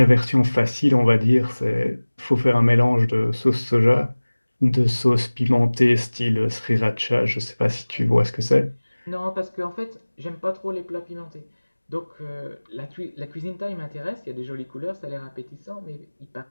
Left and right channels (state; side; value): inverted; both; correlation -1.00